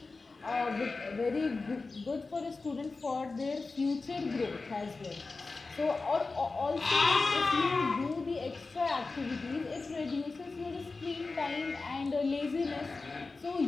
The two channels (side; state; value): right; quieter; 3.8 dB